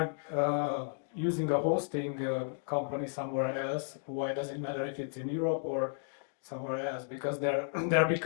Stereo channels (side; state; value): right; silent; digital silence